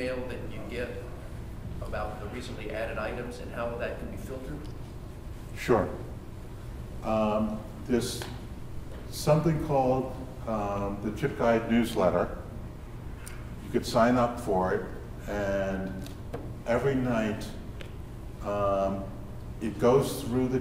that you get about the recently added items and how that can be filtered? Sure. There's something called the ChipGuide newsletter. You could sign up for it, and every night it goes through the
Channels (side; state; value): both; identical; correlation 1.00